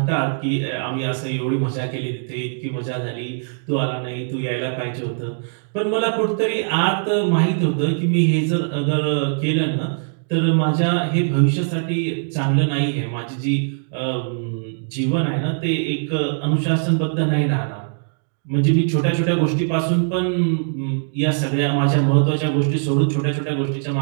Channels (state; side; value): silent; left; digital silence